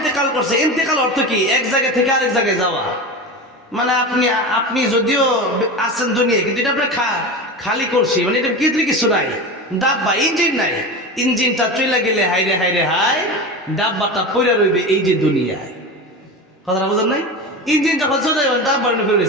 করছে। ইন্তেকাল অর্থ কি? এক জায়গা থেকে আরেক জায়গায় যাওয়া। মানে আপনি যদিও আছেন দুনিয়ায়, কিন্তু এটা আপনার খালি করছি, মানে এটা কিছু নাই। ডাব্বা, ইঞ্জিন নাই। ইঞ্জিনটা চলে গেলে হাইরে হাইরে হাই, ডাব্বাটা পইরা রইবে এই যে দুনিয়ায়। কথাটা বুঝেন নাই? ইঞ্জিন যখন চলে যাবে, ডাব্বা ফিরে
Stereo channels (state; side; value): normal; both; correlation 0.26